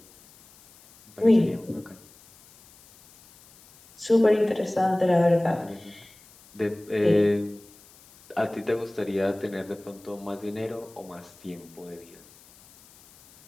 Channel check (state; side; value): noise; left; hiss, 25 dB below the sound